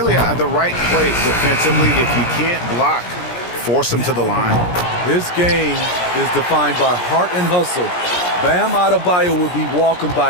the right play defensively. If you can't block, force him to the line. This game is defined by heart and hustle. Bam Adebayo will be welcomed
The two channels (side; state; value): right; late; 17 ms